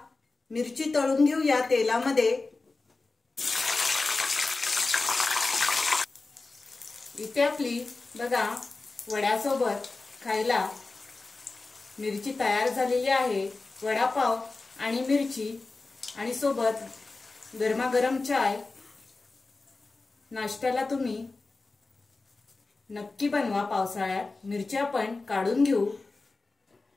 मिरची तळून घेऊया तेलामध्ये। इथे आपली बघा वड्यासोबत खायला मिरची तयार झालेली आहे। वडापाव आणि मिरची आणि सोबत गरमागरम चाय नाश्त्याला तुम्ही नक्की बनवा पावसाळ्यात। मिरची आपण काढून घेऊ।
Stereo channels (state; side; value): quieter; right; 3.6 dB